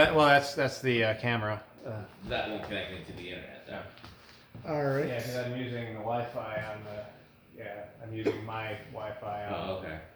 That's the camera. That won't connect into the internet. Yeah. All right. Yeah, because I'm using the Wi-Fi on the. Yeah, I'm using my Wi-Fi on Oh, okay.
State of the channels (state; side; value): identical; both; correlation 1.00